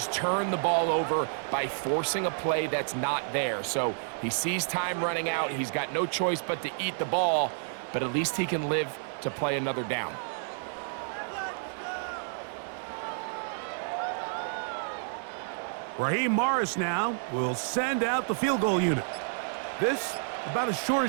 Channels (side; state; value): left; silent; 58 dB below the other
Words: turn the ball over by forcing a play that's not there. So he sees time running out. He's got no choice but to eat the ball, but at least he can live to play another down. Raheem Morris now will send out the field goal unit. This, about as short